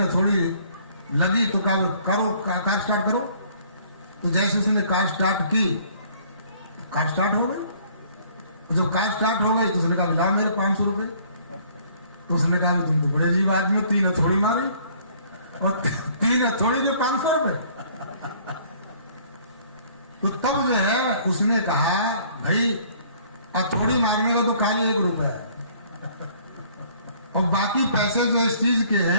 हथौड़ी लगी तो कहा करो कार स्टार्ट करो। तो जैसे उसने कार स्टार्ट की, कार स्टार्ट हो गई। जब कार स्टार्ट हो गई तो उसने कहा ला मेरे 500 रुपए। तो उसने कहा तुम तो बड़े अजीब आदमी, 3 हथौड़ी मारी और 3 हथौड़ी के 500 रुपए। तो तब जो है उसने कहा भाई हथौड़ी मारने का तो खाली 1 रुपया है, और बाकी पैसे जो इस चीज के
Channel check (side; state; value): both; inverted; correlation -0.58